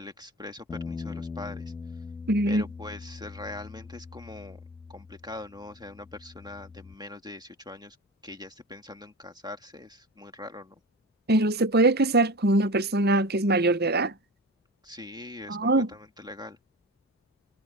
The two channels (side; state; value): both; normal; correlation 0.29